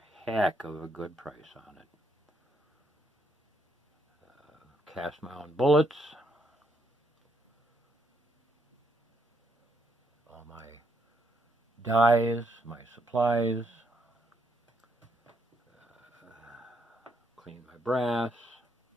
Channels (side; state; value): both; normal; correlation 0.75